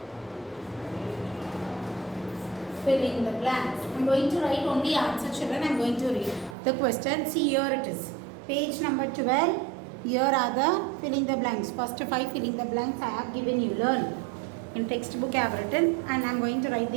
filling the blanks. I'm going to write only answer, children. I'm going to read the question. See, here it is. Page number 12. Here are the filling the blanks. First 5 filling the blanks I have given you. Learn. In textbook I have written and I'm going to write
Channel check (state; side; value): drops out; left; at 6.6 s